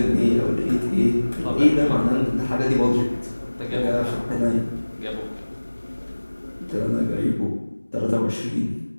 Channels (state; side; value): inverted; both; correlation -1.00